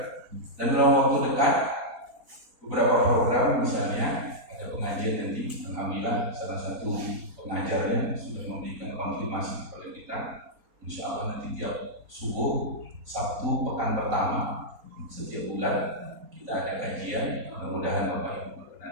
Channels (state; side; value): late; left; 4.2 ms